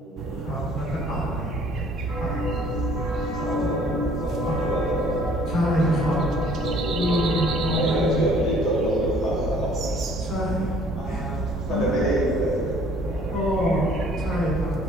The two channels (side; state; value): both; normal; correlation 0.57